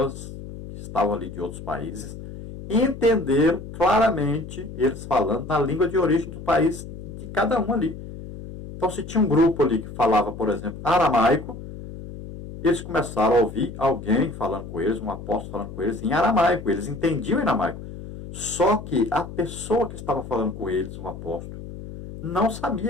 que estavam ali de outros países entenderam claramente eles falando na língua de origem do país de cada um ali. Então, se tinha um grupo ali que falava, por exemplo, aramaico, eles começaram a ouvir alguém falando com eles, um apóstolo falando com eles em aramaico. Eles entendiam em aramaico. Só que a pessoa que estava falando com eles, um apóstolo, não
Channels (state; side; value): noise; left; hum, 12 dB below the sound